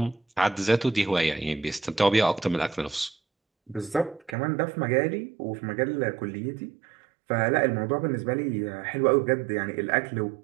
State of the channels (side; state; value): left; drops out; at 4.4 s